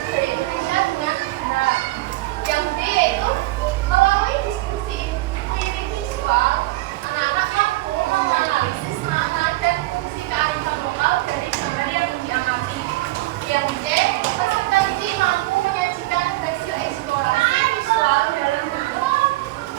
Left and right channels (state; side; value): quieter; left; 19.3 dB